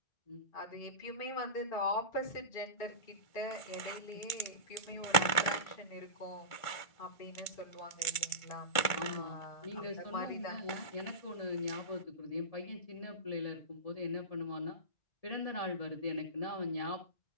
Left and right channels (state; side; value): late; right; 1.5 ms